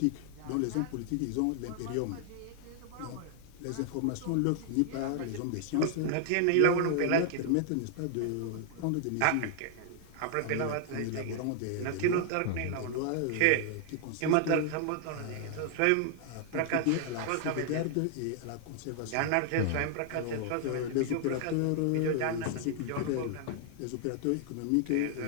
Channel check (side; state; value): both; different; correlation 0.00